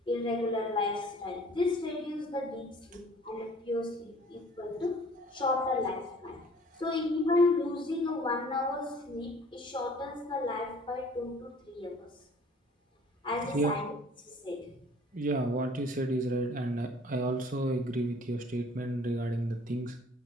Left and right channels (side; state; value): both; normal; correlation 0.52